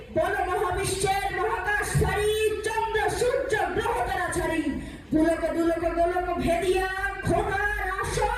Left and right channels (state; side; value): identical; both; correlation 1.00